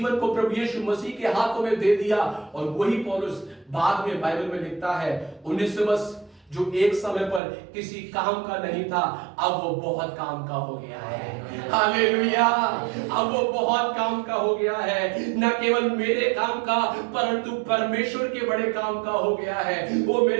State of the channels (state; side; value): drops out; left; at 7.4 s